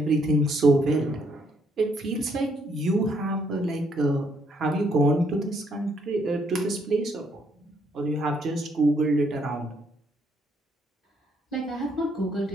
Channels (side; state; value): both; normal; correlation 0.71